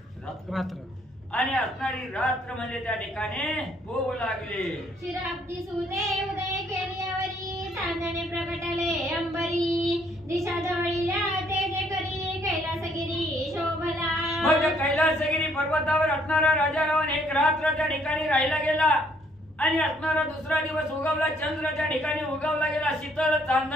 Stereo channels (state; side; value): normal; both; correlation 0.66